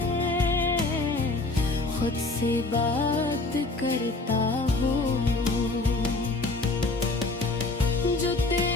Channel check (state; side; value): quieter; right; 3.2 dB